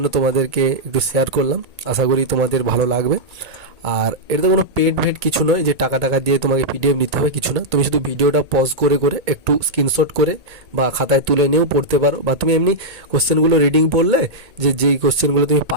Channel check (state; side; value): late; left; 1.8 ms